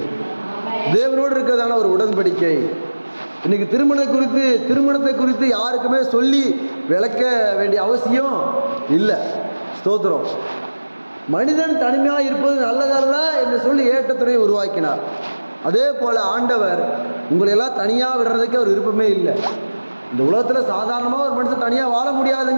தேவனோடு இருக்கிறதான ஒரு உடன்படிக்கை. இன்னைக்கு திருமணத்தை குறித்து யாருக்குமே சொல்லி விளக்க வேண்டிய அவசியம் இல்லை. ஸ்தோத்திரம். மனிதன் தனிமையாக இருப்பது நல்லதல்ல என்று சொல்லி ஏற்றத்துறையை உருவாக்கினார். அதே போல் ஆண்டவர் உங்களையெல்லாம் தனியாக விடுறதுக்கு அவர் விருப்பமே இல்லை. இந்த உலகத்தில் சாதாரணமாக ஒரு மனுஷன் தனியாக வாழ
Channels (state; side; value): inverted; both; correlation -1.00